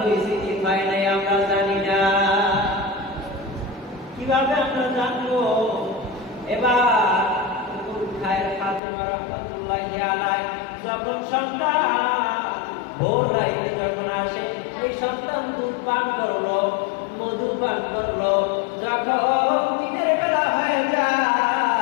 কি হয় নাই আমরা জানি না, কিভাবে আমরা জানবো? এবার ফাতেমা রাহমাতুল্লাহি আলাইহা যখন সন্তান ভোর রাইতে যখন আসে, এই সন্তান দুধ পান করলো, মধু পান করলো, যখন দিনের বেলা হয়ে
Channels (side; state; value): right; drops out; at 8.8 s